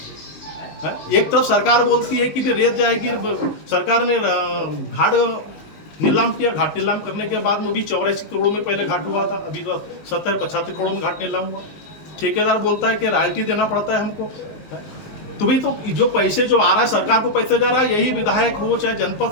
एक तरफ सरकार बोलती है कि भी रेत जाएगी, सरकार ने घाट नीलाम किया, घाट नीलाम करने के बाद में भी 84 करोड़ में पहले घाट हुआ था, अभी 70-75 करोड़ में घाट नीलाम हुआ। ठेकेदार बोलता है कि रॉयल्टी देना पड़ता है हमको। तो भाई तो जो पैसे जो आ रहा है, सरकार को पैसे जा रहा है, यही विधायक हो चाहे जनपद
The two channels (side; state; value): right; late; 19 ms